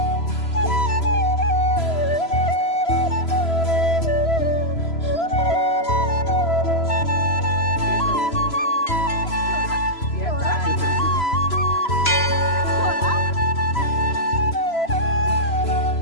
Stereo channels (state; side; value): late; right; 3.0 ms